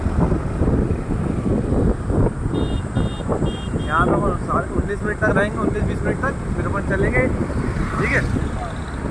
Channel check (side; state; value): both; identical; correlation 1.00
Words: यहाँ पे अपन 19 मिनट तक रहेंगे, 19-20 मिनट तक, फिर अपन चलेंगे। ठीक है,